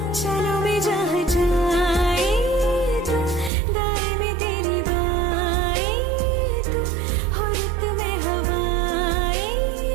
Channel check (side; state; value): left; drops out; at 3.5 s